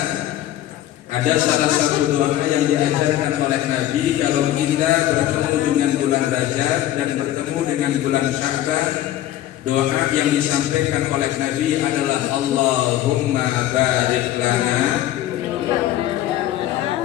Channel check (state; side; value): quieter; right; 13.4 dB